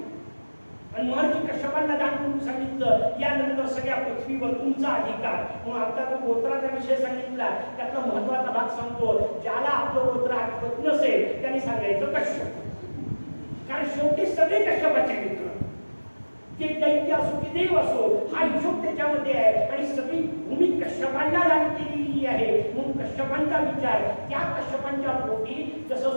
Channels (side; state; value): both; inverted; correlation -1.00